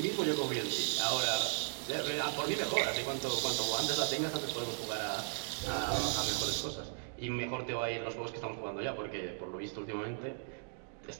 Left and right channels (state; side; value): silent; left; digital silence